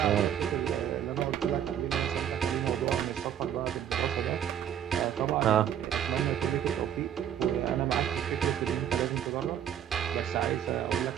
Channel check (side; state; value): left; quieter; 9.8 dB